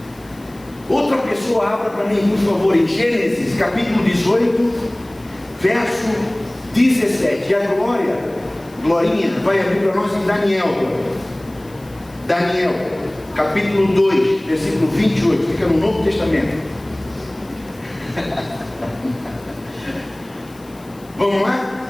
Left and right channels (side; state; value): left; noise; hiss, 26 dB below the sound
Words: Outra pessoa abra para mim, por favor, em Gênesis capítulo 18, verso 17. E a Glorinha, vai abrir para nós em Daniel, capítulo 2, versículo 28. Fica no Novo Testamento. Vamos